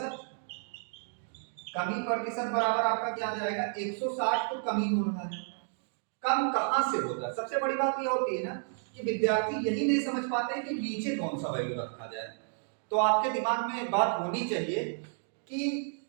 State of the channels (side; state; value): left; silent; digital silence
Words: कमी प्रतिशत बराबर आपका क्या आ जाएगा 160, तो कमी हो रहा है। कम कहां से होता है, सबसे बड़ी बात यह होती है ना कि विद्यार्थी यही नहीं समझ पाते कि नीचे कौन सा वैल्यू रखा जाए। तो आपके दिमाग में एक बात होनी चाहिए कि